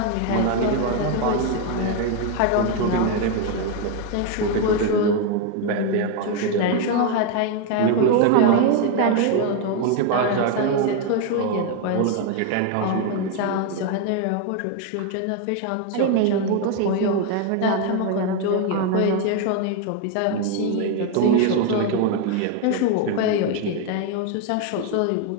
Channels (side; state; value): both; different; correlation 0.01